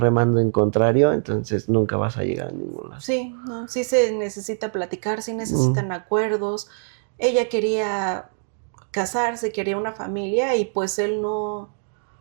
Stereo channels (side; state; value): left; silent; digital silence